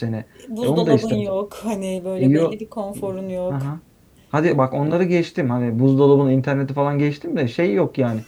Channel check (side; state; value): both; identical; correlation 1.00